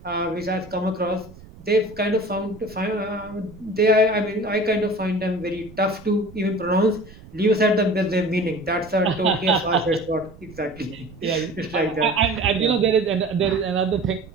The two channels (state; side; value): noise; right; rumble, 20 dB below the sound